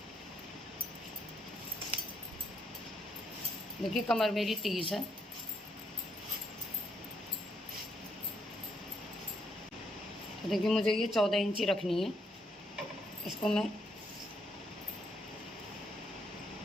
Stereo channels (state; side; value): normal; both; correlation 0.74